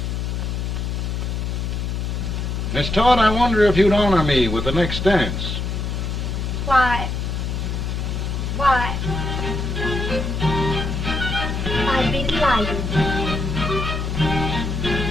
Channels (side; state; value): left; noise; hum, 2 dB below the sound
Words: Miss Todd, I wonder if you'd honor me with the next dance. Why, I'd be delighted.